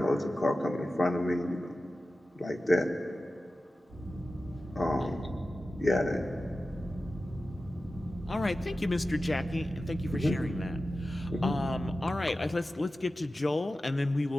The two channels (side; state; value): both; normal; correlation 0.94